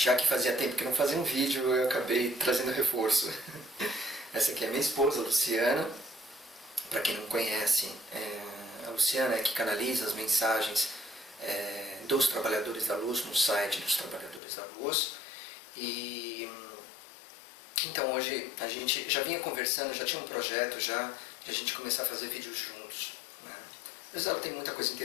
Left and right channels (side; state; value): right; drops out; at 14.4 s